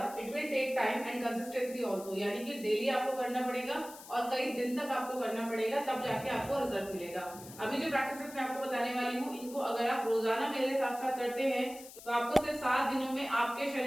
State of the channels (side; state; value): left; noise; hiss, 16 dB below the sound